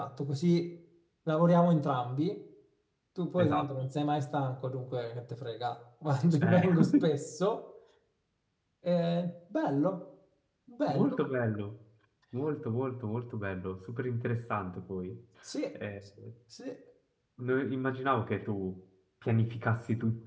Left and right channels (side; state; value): both; identical; correlation 1.00